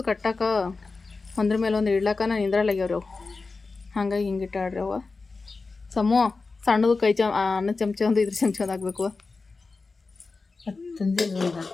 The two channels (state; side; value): quieter; right; 4.0 dB